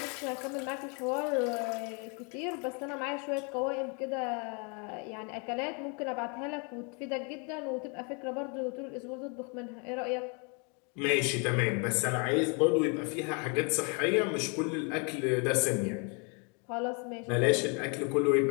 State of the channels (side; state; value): right; quieter; 34.8 dB